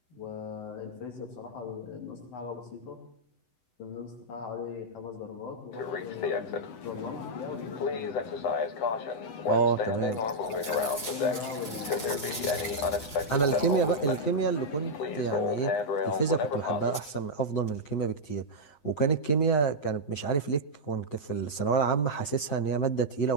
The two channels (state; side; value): late; right; 7.9 ms